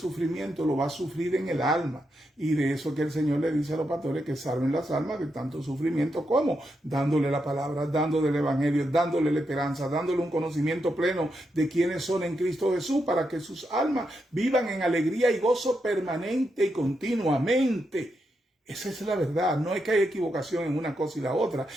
lo va a sufrir en el alma. Y de eso que el Señor le dice a los pastores, que salven las almas de tanto sufrimiento. ¿Cómo? Dándole la palabra, dándole el evangelio, dándole la esperanza, dándole un conocimiento pleno de quiénes son en Cristo Jesús, para que sus almas vivan en alegría y gozo permanente y continuamente. Esa es la verdad. No es que haya equivocación en una cosa y la otra.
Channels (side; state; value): both; normal; correlation 0.83